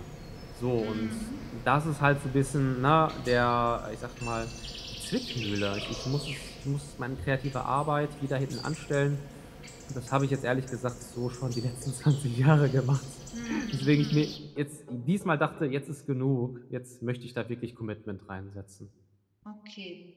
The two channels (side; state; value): both; identical; correlation 1.00